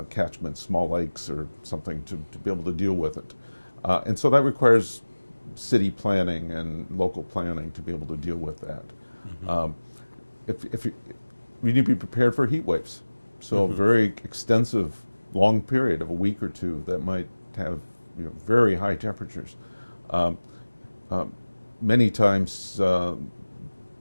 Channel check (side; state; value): both; inverted; correlation -1.00